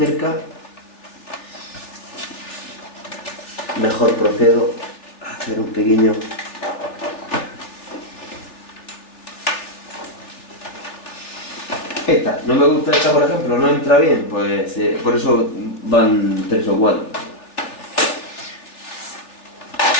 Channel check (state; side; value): late; right; 3.4 ms